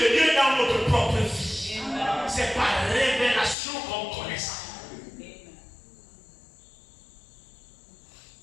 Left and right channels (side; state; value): right; drops out; at 3.6 s